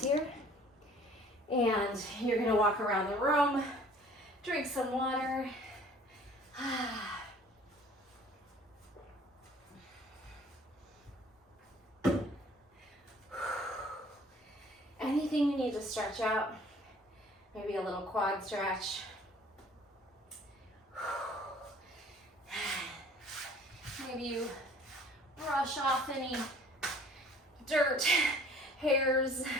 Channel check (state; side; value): normal; both; correlation 0.53